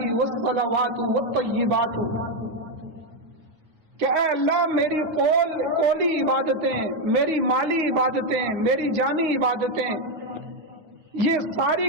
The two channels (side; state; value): left; late; 9.4 ms